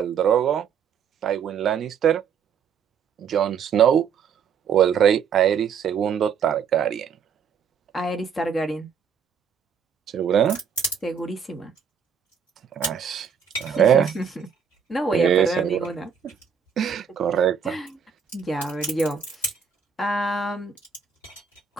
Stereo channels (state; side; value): quieter; left; 7.0 dB